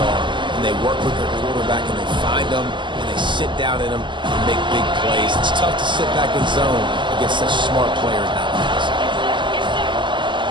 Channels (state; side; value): late; left; 0.23 ms